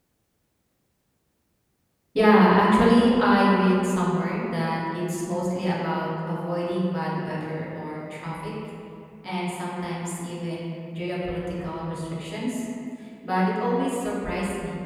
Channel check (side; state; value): both; identical; correlation 1.00